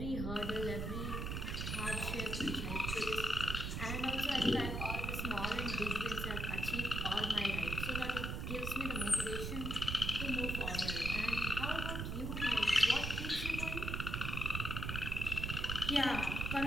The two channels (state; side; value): noise; right; rumble, 3 dB below the sound